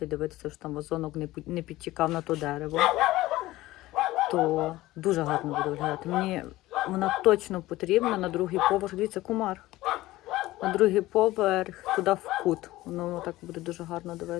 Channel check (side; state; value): right; quieter; 17.3 dB